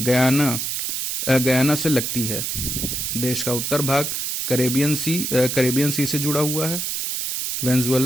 से लगती है। देश का उत्तर भाग कैरेबियन सी से जुड़ा हुआ है।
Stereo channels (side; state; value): right; noise; hiss, 2 dB below the sound